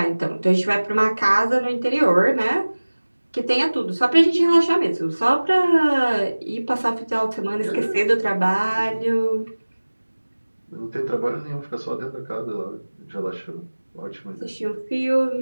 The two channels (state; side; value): inverted; both; correlation -1.00